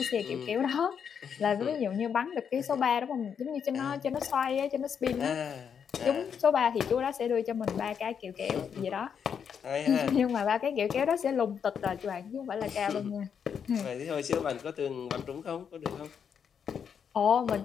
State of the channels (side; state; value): right; quieter; 7.4 dB